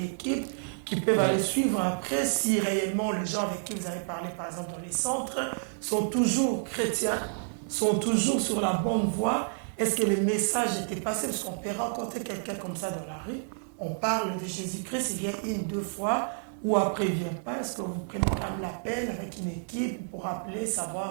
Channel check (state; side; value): silent; left; digital silence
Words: équipe qui peut aller suivre après si réellement les gens avec qui vous avez parlé, par exemple dans les centres, sont toujours chrétiens, sont toujours sur la bonne voie? Est-ce que le message était passé? Parce qu'on peut rencontrer quelqu'un comme ça dans la rue, on parle de Jésus-Christ, il vient une, deux fois, ou après il ne vient pas. Est-ce que vous prenez quand même la peine avec une équipe pour appeler,